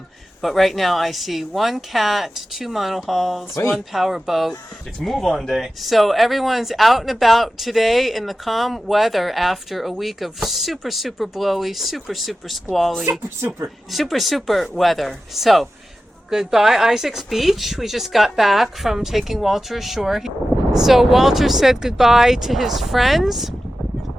but right now I see one cat, two monohulls, one power boat. It's move on day. So everyone's out and about today in the calm weather after a week of super, super blowy, super, super squally, super weather. So, goodbye Isaac's Beach. We just got back from taking Walter ashore. So Walter said goodbye to his friends.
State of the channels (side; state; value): both; normal; correlation 0.94